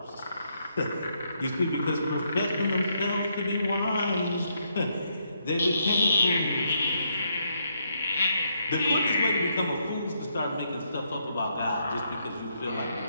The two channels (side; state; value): both; inverted; correlation -0.76